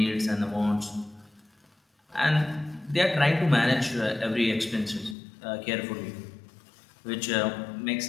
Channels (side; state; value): right; drops out; at 5.2 s